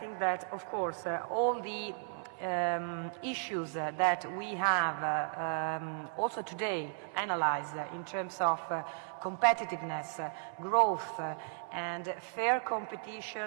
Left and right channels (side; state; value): left; silent; 54 dB below the other